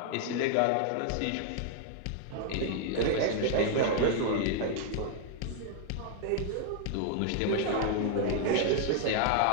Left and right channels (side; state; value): both; different; correlation 0.00